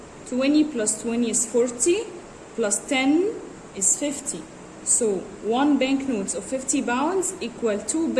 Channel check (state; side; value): identical; both; correlation 1.00